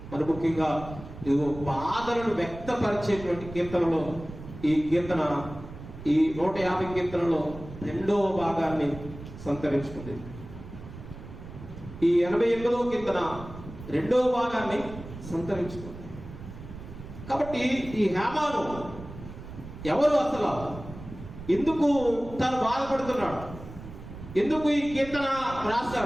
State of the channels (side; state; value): right; noise; rumble, 13 dB below the sound